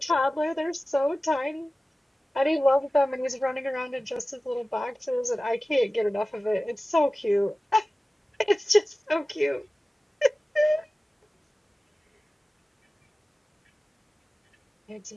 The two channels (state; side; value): normal; both; correlation 0.96